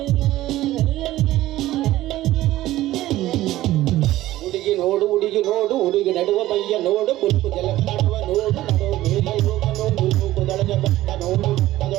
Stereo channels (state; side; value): quieter; left; 15.5 dB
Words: ಹುಡುಗಿ ನೋಡು ಹುಡುಗಿ ನೋಡು ಹುಡುಗಿ ನಡುವ ಮೈಯ ನೋಡು ಕುಲ್ಕು ಜಲಕಾಡುವ ನೋಡು ನಡುವ ಮೇಲೆ ಹೋಗ ನೋಡು ಮೂಗುದೊಳಗೆ ಬೆಟ್ಟ ನೋಡು